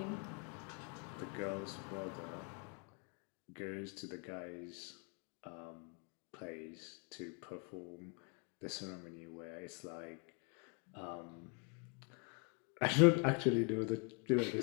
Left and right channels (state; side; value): quieter; right; 38.7 dB